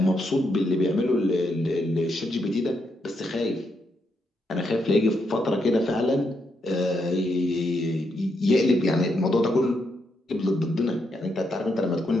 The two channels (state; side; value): normal; both; correlation 0.80